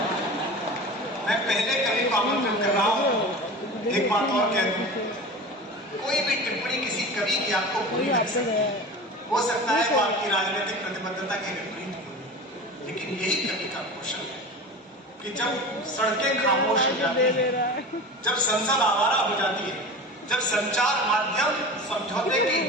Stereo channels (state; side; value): normal; both; correlation 0.33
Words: मैं पहले कवि को आमंत्रित कर रहा हूं, एक बात और कह दूं, कोई भी टिप्पणी किसी कवि की आपको बुरी लग सकती है, हो सकता है वो आपकी राजनीतिक प्रतिबद्धता के विपरीत हो, लेकिन यही कवि का कौशल है कि जब सड़कें खामोश हो जाती हैं, जब संसद आवारा हो जाती है, जब संचार माध्यम समझौते की